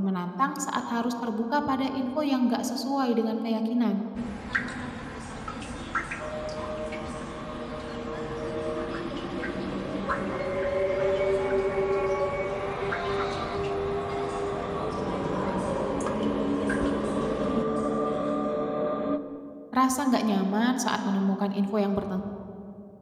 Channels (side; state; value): both; identical; correlation 1.00